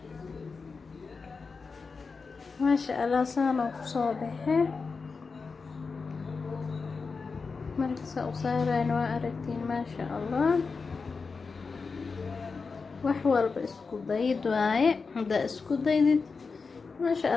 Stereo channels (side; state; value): right; quieter; 4.7 dB